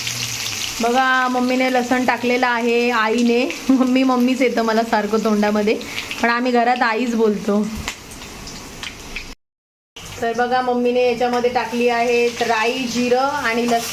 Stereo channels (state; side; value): identical; both; correlation 1.00